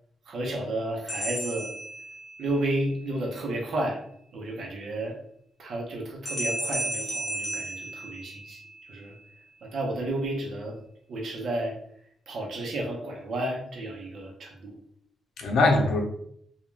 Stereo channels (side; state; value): both; normal; correlation 0.75